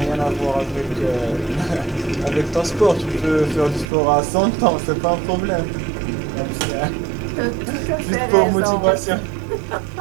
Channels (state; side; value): drops out; left; at 3.9 s